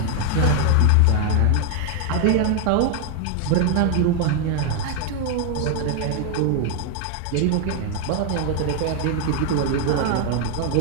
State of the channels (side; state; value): both; different; correlation 0.00